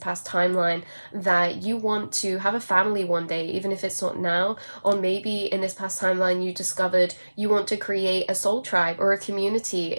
timeline that you want to have a family one day, even if it's not now. Or maybe in this past timeline you discovered you want to create a soul tribe or a community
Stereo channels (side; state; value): both; inverted; correlation -1.00